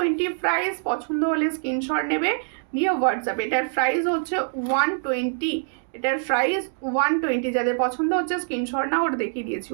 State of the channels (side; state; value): left; silent; digital silence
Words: প্রাইস, পছন্দ হলে স্ক্রিনশট নেবে, নিয়ে হোয়াটসঅ্যাপ। এটার প্রাইস হচ্ছে 120, এটার প্রাইস 120। যাদের পছন্দ হচ্ছে স্ক্রিনশট না ওটা দেখিয়ে দিয়েছি